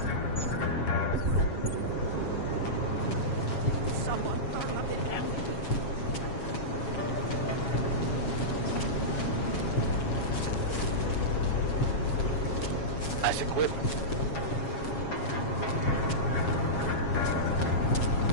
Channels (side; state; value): right; late; 7.3 ms